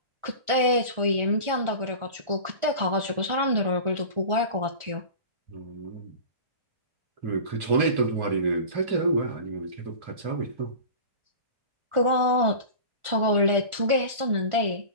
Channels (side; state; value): left; late; 1.4 ms